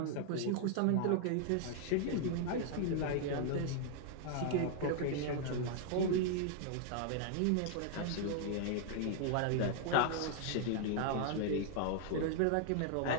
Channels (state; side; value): different; both; correlation 0.00